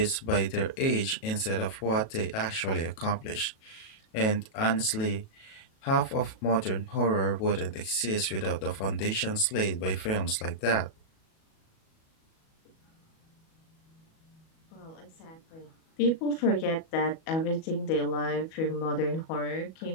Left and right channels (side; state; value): right; late; 37 ms